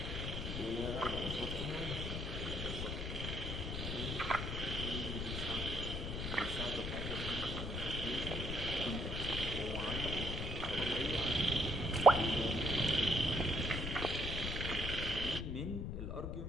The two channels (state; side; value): noise; left; rumble, 3 dB below the sound